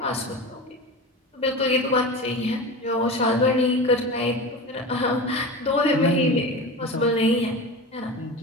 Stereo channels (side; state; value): both; normal; correlation 0.29